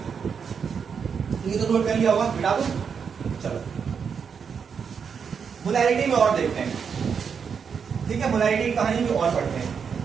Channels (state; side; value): quieter; left; 6.5 dB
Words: ये तो नोट कर लिया होगा, बिठा दो। चलो मोलैरिटी में और देखते हैं, ठीक है। मोलैरिटी की कहानी में और पढ़ते हैं।